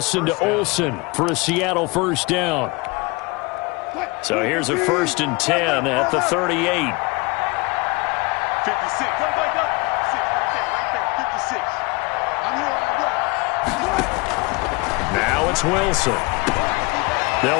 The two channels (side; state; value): right; quieter; 26.8 dB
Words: to Olsen for a Seattle 1st down. So here's a 1st and 10 at the 38. 56. Go. 6 right there. 56. I'm here on the block. Now it's Wilson.